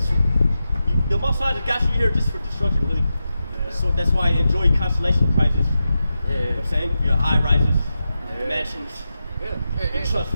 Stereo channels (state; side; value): inverted; both; correlation -0.90